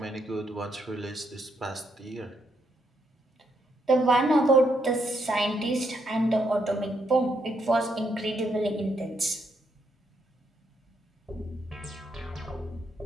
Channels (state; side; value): normal; both; correlation 0.76